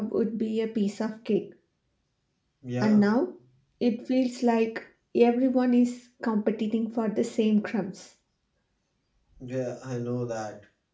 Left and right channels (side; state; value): both; identical; correlation 1.00